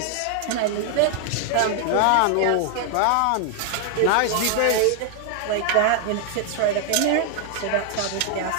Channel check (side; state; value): both; different; correlation 0.00